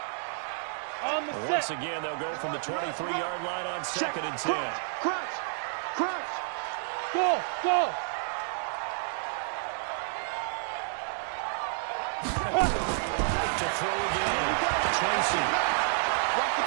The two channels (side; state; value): left; silent; digital silence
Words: On the Once set. again, they'll go from the 23-yard line on second and 10. Crunch. Crunch. Go, go. To throw again, Tracy.